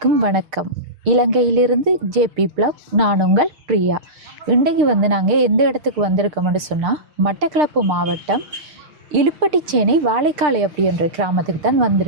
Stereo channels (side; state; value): left; late; 6.7 ms